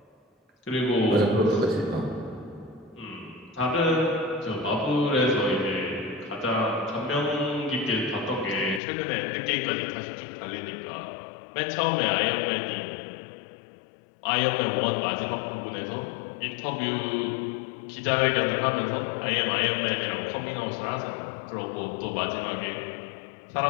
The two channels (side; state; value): right; drops out; at 8.8 s